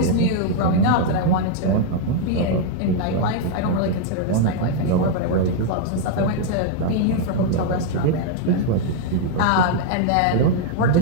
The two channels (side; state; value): both; different; correlation 0.00